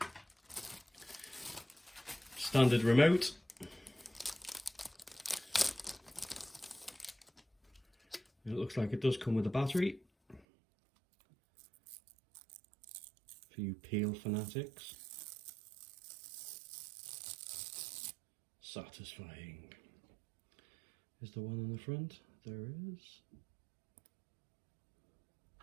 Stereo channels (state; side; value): drops out; left; at 10.4 s